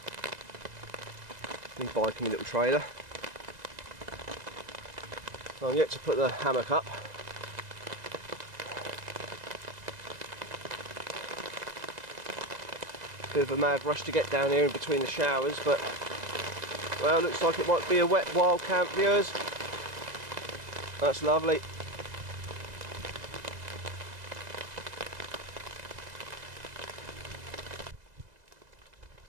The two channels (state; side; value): late; left; 2.0 ms